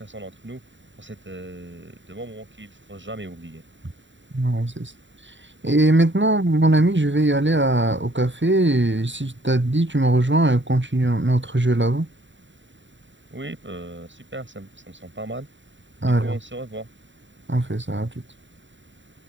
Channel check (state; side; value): late; left; 0.54 ms